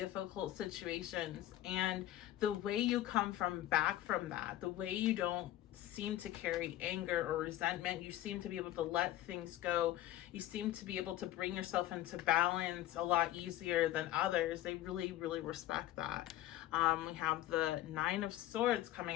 situations, and the way you come back from that, the way you don't seem to carry anger or resentment, you seem to be able to let things go, you seem to be able to bring yourself into balance a lot easier than others. They really, really respect that. We have the Nine of Swords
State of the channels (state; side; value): quieter; right; 14.3 dB